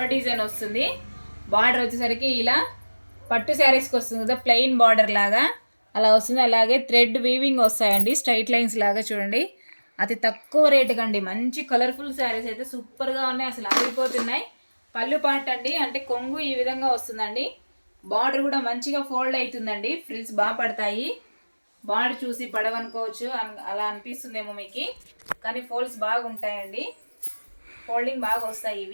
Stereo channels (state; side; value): inverted; both; correlation -1.00